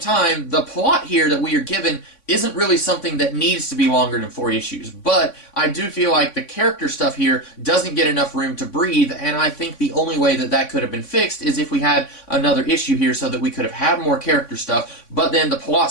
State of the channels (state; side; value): late; right; 3.5 ms